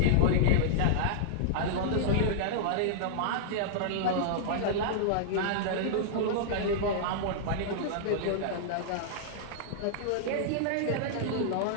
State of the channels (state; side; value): different; both; correlation -0.02